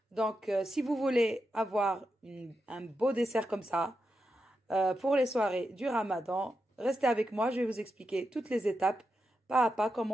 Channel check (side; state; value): both; normal; correlation 0.87